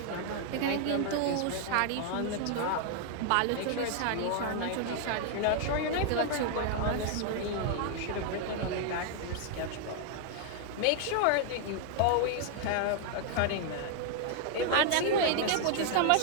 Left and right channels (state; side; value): different; both; correlation 0.00